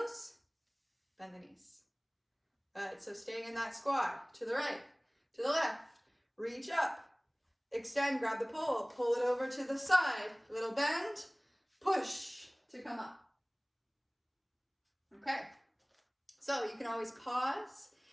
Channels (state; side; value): identical; both; correlation 1.00